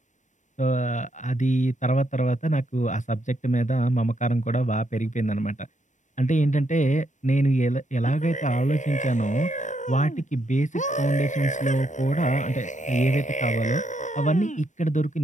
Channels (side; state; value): right; late; 0.35 ms